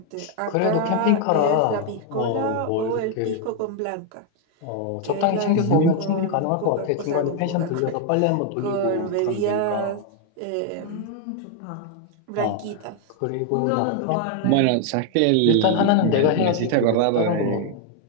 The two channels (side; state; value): both; different; correlation 0.00